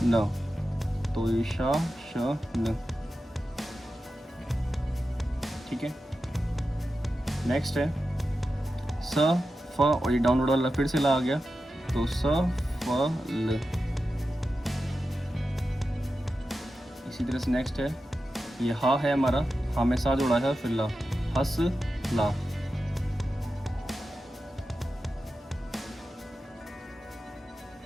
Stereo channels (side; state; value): both; normal; correlation 0.91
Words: न, तो ये शा श न। ठीक है, नेक्स्ट है स फ, और ये डाउनवर्ड वाला फिर से ला आ गया तो स फ ल। इसी तरह से नेक्स्ट है ये हा है हमारा, हा में सा जोड़ा है फिर ला, हस ला।